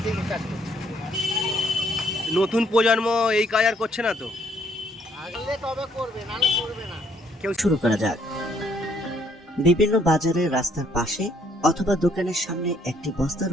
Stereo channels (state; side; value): normal; both; correlation 0.68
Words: থেকে কাজ করছি। নতুন প্রজন্ম এই কাজ আর করছে না তো? আগলে তবে করবে, নাহলে করবে না। শুরু করা যাক। বিভিন্ন বাজারে, রাস্তার পাশে অথবা দোকানের সামনে একটি বস্তার